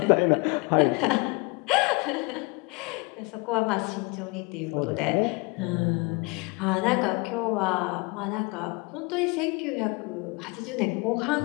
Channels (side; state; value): right; quieter; 28.1 dB